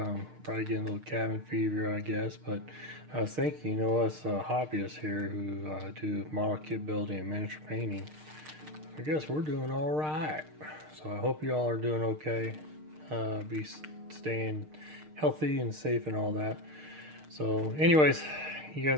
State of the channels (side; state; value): left; late; 6.6 ms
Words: Probably getting a little cabin fever, I guess. But I was thinking, us hobbyists here who do model kit building and miniature painting, I guess we're doing all right. So I hope y'all are doing okay. Be staying healthy and safe and all that. So, anyways, you